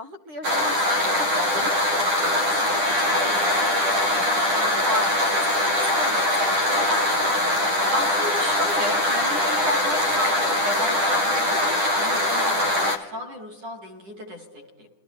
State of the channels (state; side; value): late; left; 10 ms